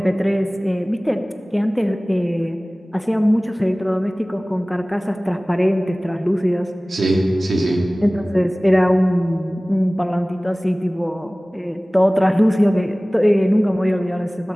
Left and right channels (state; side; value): normal; both; correlation 0.98